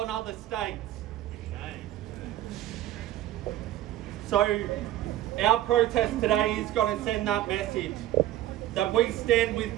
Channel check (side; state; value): left; quieter; 13.7 dB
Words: other states. So our protest today is going to send that message that we stand with